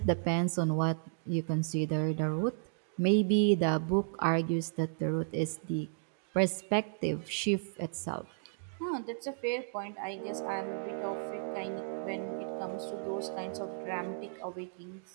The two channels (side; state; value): left; silent; digital silence